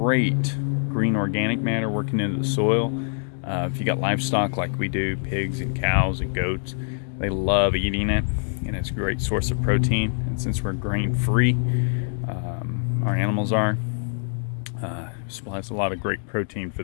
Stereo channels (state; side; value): silent; right; digital silence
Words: green organic matter working into the soil. If you got livestock like we do, pigs and cows and goats, they love eating it, and it's a great source of protein. And since we're grain free, our animals are, supplies a lot of great protein